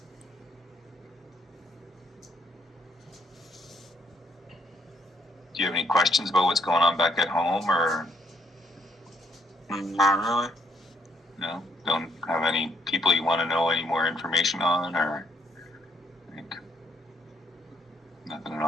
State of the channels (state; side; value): normal; both; correlation 0.71